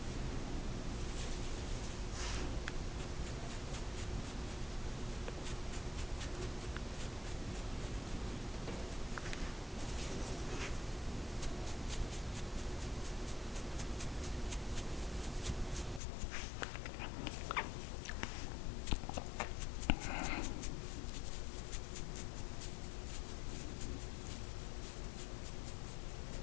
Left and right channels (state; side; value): drops out; right; at 16.0 s